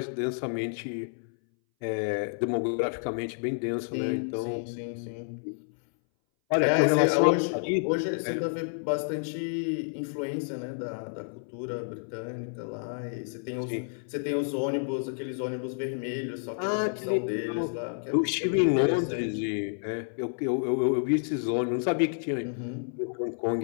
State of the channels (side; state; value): right; silent; 58 dB below the other